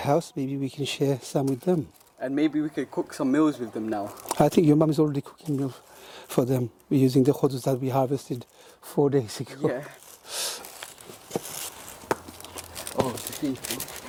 Maybe we can share some with them. And maybe we could cook some meals with them now. I think your mum is already cooking meal for them. We're using the khudus that we harvested 4 days ago. Yeah. Oh, it's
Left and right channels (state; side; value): identical; both; correlation 1.00